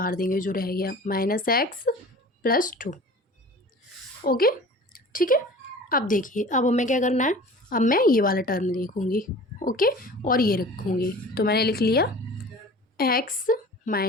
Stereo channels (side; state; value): both; normal; correlation 0.41